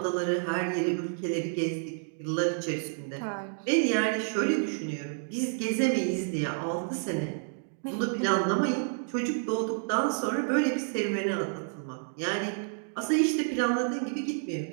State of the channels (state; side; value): silent; left; digital silence